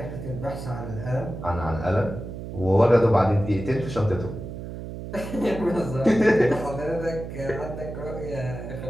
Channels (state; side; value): noise; right; hum, 9 dB below the sound